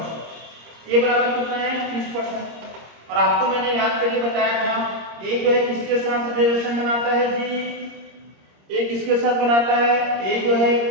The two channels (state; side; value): late; left; 26 ms